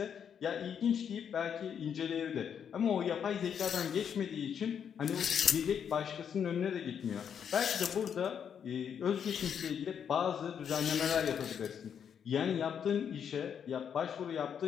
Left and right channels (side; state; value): right; quieter; 7.9 dB